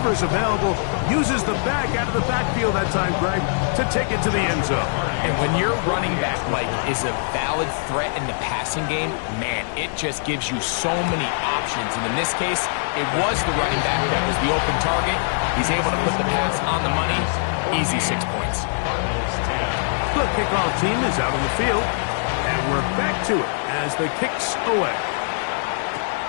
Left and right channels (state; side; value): silent; right; digital silence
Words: available, uses the back out of the backfield that time, Greg, to take it to the end zone. And when your running back, Mike, is a valid threat in the passing game, man, it just gives you so many options. And in this case, it was the running back that was the open target. He's able to put the pass on the money. Easy 6 points. The kickoff team is out on the field, and we're back to it as the kicks away.